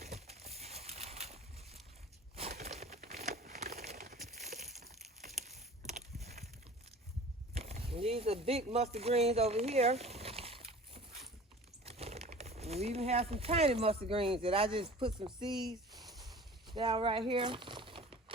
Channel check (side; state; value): both; normal; correlation 0.42